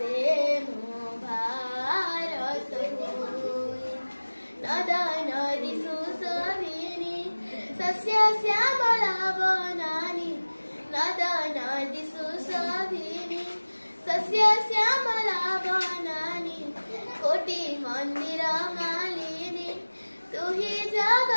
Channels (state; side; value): inverted; both; correlation -1.00